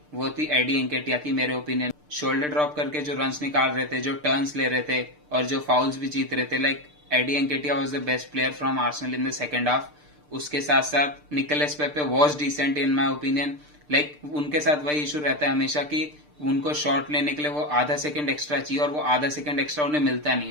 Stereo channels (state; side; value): late; left; 6.7 ms